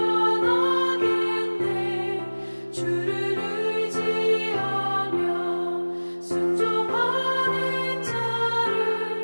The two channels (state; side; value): inverted; both; correlation -1.00